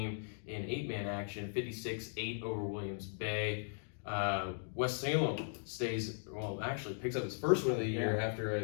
in 8-man action, 56-8 over Williams Bay. West Salem picks up its first win of the year after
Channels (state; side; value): silent; right; digital silence